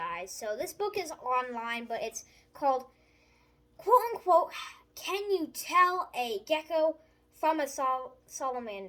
So this book is online, but it's called, quote unquote, Can You Tell a Gecko from a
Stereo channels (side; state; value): both; identical; correlation 1.00